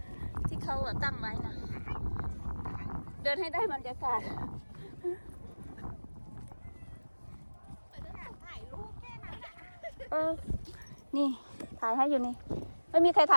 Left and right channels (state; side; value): inverted; both; correlation -1.00